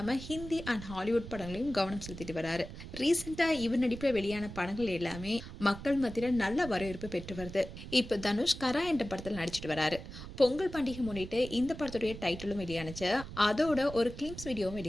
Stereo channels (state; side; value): noise; right; rumble, 12 dB below the sound